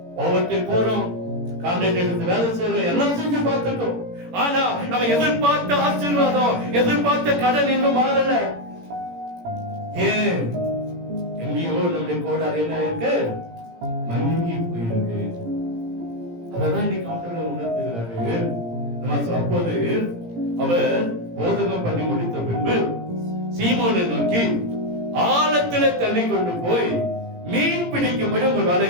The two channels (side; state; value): left; late; 17 ms